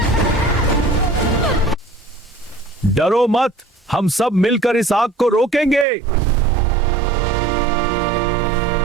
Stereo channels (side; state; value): left; drops out; at 5.9 s